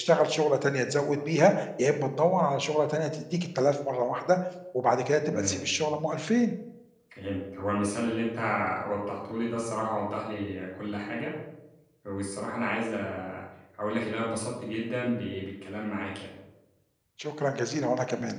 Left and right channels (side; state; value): both; identical; correlation 1.00